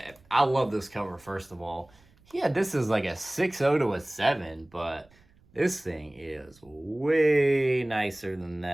I love this cover, first of all. He had this as like a 6.0 to a 7, but this thing is way nicer than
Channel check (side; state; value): right; noise; rumble, 30 dB below the sound